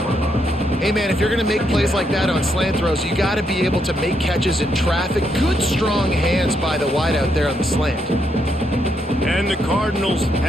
Hey, man, if you're going to make plays like that on slant throws, you got to be able to make catches in traffic. Good, strong hands by the wideout there on the slant. And the Cardinals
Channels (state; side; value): normal; both; correlation 0.77